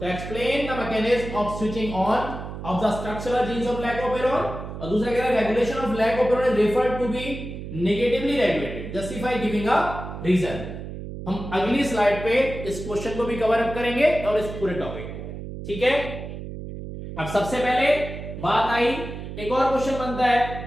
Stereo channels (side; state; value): right; noise; hum, 9 dB below the sound